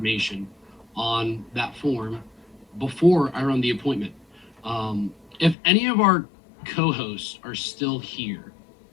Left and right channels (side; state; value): right; drops out; at 5.6 s